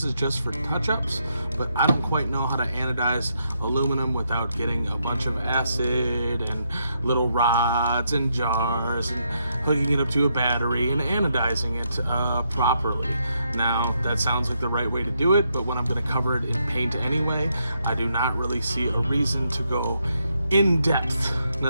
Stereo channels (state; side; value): inverted; both; correlation -0.78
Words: is just for touch-ups, but I don't quite know how to anodize aluminum without getting a bunch of acid and little rods and jars and hooking it up to a battery and anodizing it properly. Now that sounds like the right way to do it, but when I'm going to cover it in paint anyway, I do not really see a reason to go in depth